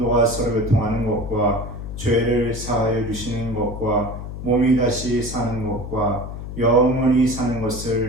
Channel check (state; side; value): noise; left; hum, 8 dB below the sound